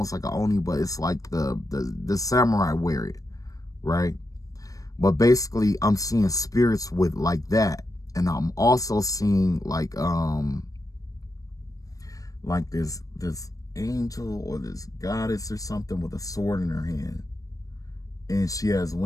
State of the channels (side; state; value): right; late; 0.17 ms